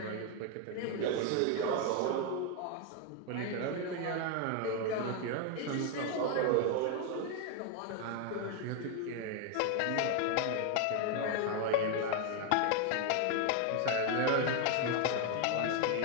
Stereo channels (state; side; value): different; both; correlation 0.01